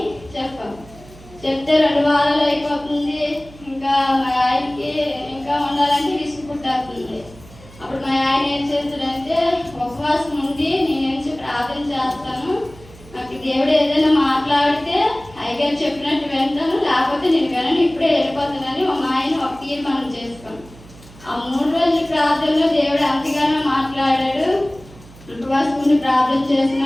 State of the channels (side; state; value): right; noise; hum, 21 dB below the sound